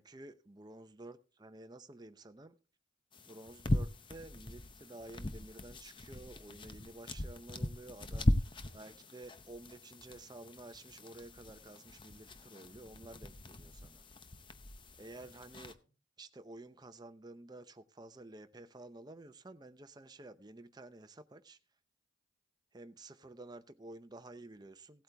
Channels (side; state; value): both; normal; correlation 0.92